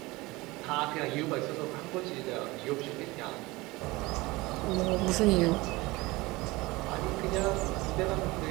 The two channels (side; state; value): left; quieter; 21.7 dB